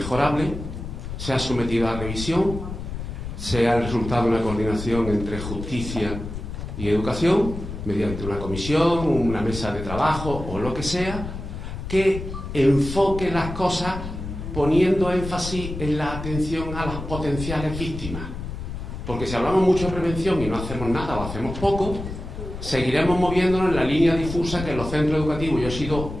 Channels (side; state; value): left; noise; rumble, 8 dB below the sound